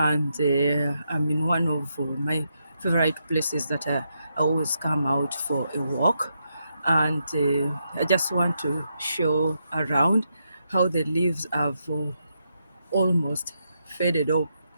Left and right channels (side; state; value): both; inverted; correlation -0.82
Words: I'm in one of my favorite places that I always come out for a walk, and I just want to show around how the leaves have almost faded